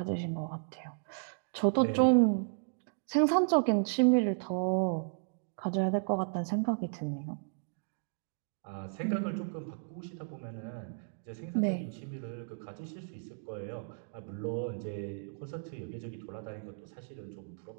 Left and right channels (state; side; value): silent; left; digital silence